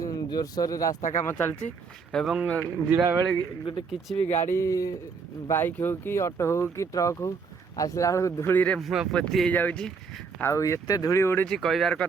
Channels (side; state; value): left; quieter; 5.3 dB